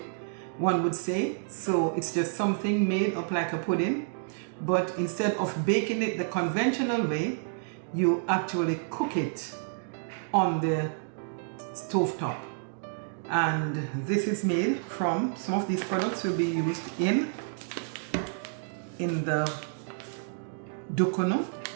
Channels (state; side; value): silent; left; digital silence